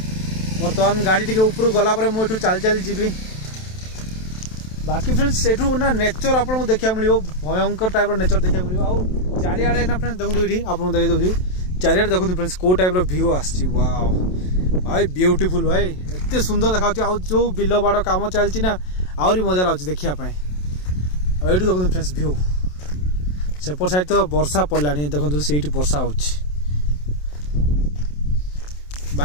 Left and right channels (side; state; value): right; late; 27 ms